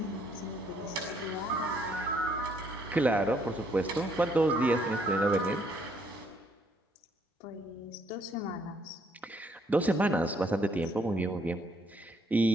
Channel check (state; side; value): normal; both; correlation 0.68